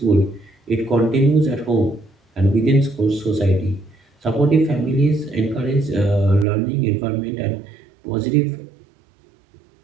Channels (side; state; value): left; drops out; at 6.5 s